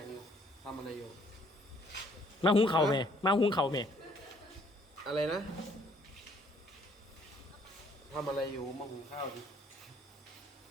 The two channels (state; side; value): normal; both; correlation 0.63